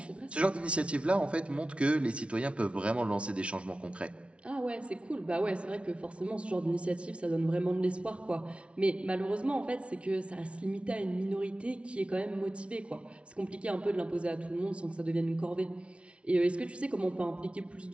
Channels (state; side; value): late; left; 0.060 ms